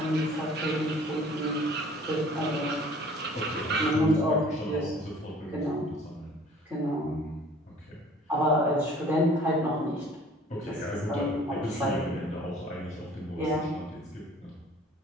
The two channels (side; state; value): both; normal; correlation 0.52